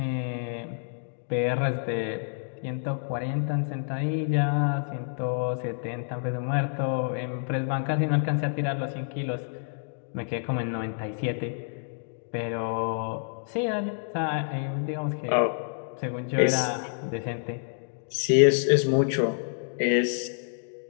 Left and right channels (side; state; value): right; silent; digital silence